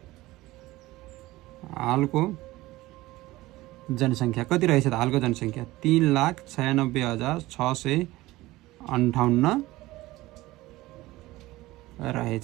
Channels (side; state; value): left; quieter; 18.4 dB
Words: हालको जनसङ्ख्या कति रहेछ त हालको जनसङ्ख्या 3,96,658